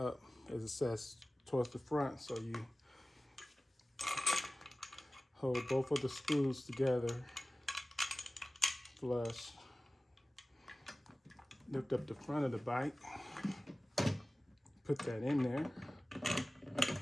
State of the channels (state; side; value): normal; both; correlation 0.97